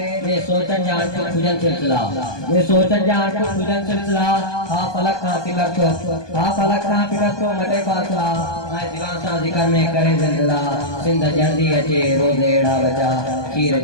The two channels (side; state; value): right; late; 1.2 ms